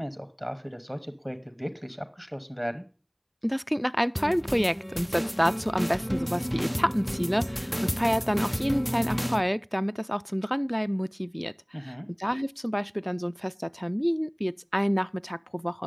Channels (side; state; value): both; identical; correlation 1.00